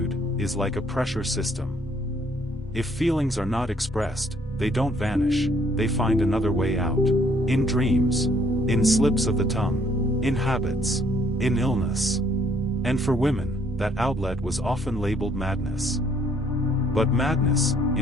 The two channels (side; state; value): both; normal; correlation 0.64